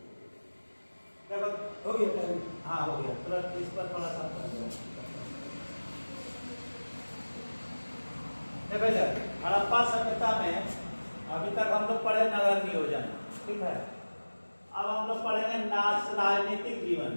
हो गया टाइम हाँ हो गया तुरंत इस पर थोड़ा सा कर दो। देखो सर हड़प्पा सभ्यता में अभी तक हम लोग पढ़े नगर नियोजन ठीक है अब हम लोग पढ़ेंगे राजनीतिक जीवन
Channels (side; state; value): both; inverted; correlation -1.00